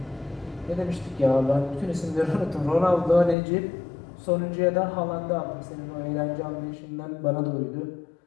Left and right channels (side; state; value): right; drops out; at 3.4 s